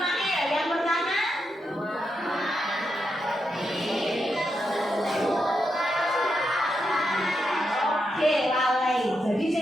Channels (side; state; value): both; normal; correlation 0.84